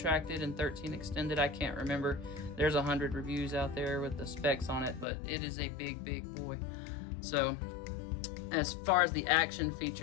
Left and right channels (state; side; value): drops out; right; at 5.1 s